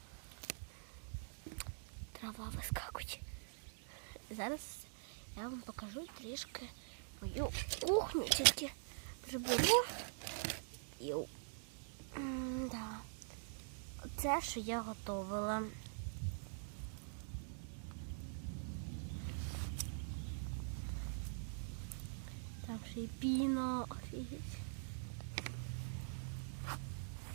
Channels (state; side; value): silent; left; digital silence